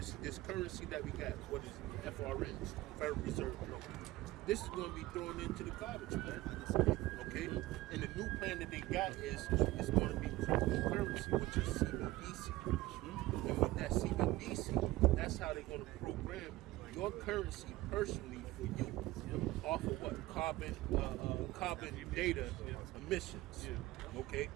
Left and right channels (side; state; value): left; quieter; 17.9 dB